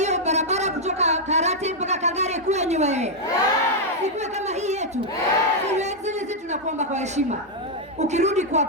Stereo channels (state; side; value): normal; both; correlation -0.02